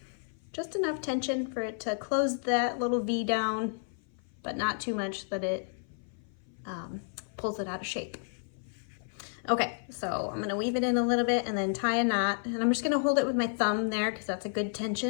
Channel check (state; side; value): silent; right; 56 dB below the other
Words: just enough tension for it to close that little V down, but not too much that it pulls it out of shape. Okay, so I'm gonna weave it in a little bit and then tie a knot, and I'm just gonna hold it with my thumb there because that's a good